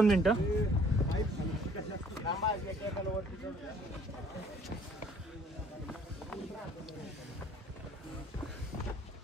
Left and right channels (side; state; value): both; normal; correlation 0.57